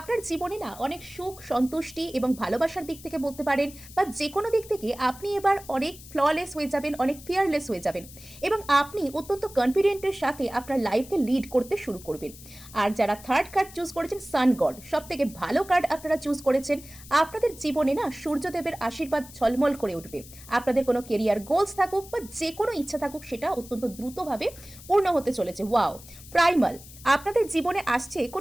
জীবনে না অনেক সুখ, সন্তুষ্টি এবং ভালোবাসার দিক থেকে বলতে পারেন, বা যে কোনো দিক থেকে আপনি এবার অনেক ফ্ললেস হয়ে যাবেন, অনেক ফিয়ারলেস হয়ে যাবেন এবং আপনি অত্যন্ত কনফিডেন্টের সাথে আপনার লাইফকে লিড করতে শুরু করবেন। আর যারা থার্ড কার্ড চুজ করেছেন, সান গড, সব থেকে ভালো কার্ড আপনারা চুজ করেছেন। আপনাদের জীবনে না সূর্যদেবের আশীর্বাদ ঝলমল করে উঠবে। আপনাদের কোনো কেরিয়ার গোলস থাকুক বা যে কোনো ইচ্ছা থাকুক, সেটা অত্যন্ত দ্রুতভাবে পূর্ণ হতে চলেছে। ওয়াও! প্রাইমাল আপনাদের জীবনে আসছে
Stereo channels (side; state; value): left; noise; hiss, 18 dB below the sound